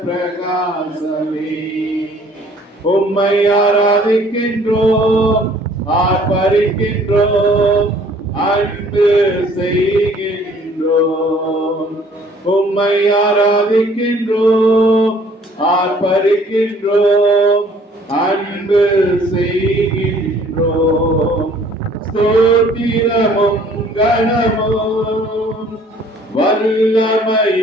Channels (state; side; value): normal; both; correlation 0.57